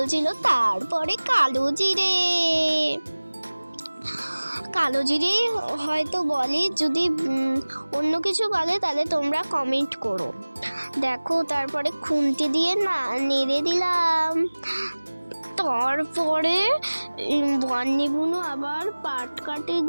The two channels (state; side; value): inverted; both; correlation -1.00